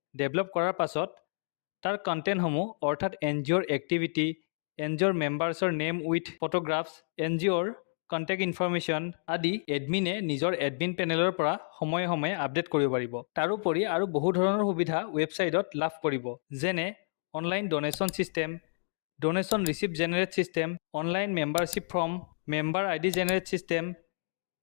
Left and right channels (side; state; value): right; silent; digital silence